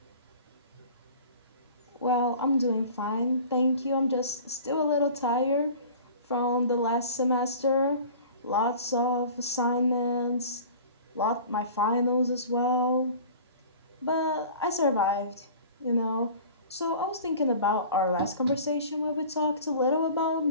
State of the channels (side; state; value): both; inverted; correlation -0.43